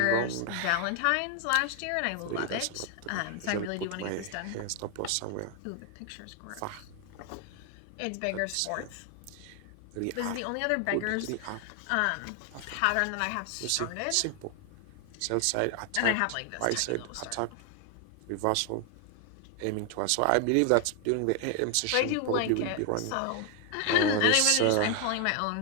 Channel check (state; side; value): different; both; correlation 0.00